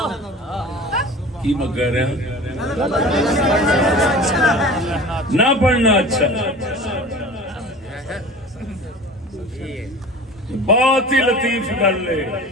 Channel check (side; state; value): both; normal; correlation 0.39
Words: کی میں کہہ رہے ہیں؟ نہ پڑھنا اچھا ہے۔ بہت ہی لطیف گل ہے،